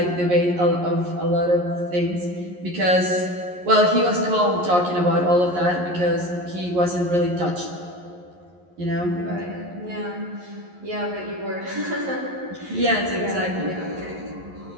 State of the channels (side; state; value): left; late; 11 ms